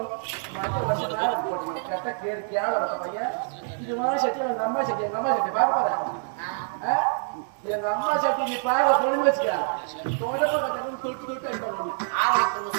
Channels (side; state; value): left; silent; digital silence